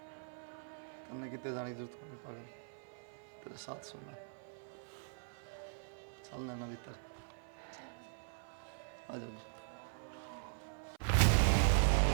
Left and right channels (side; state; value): left; silent; 51 dB below the other